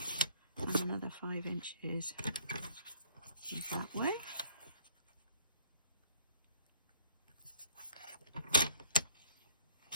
And another 5 inches that way.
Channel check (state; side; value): inverted; both; correlation -0.60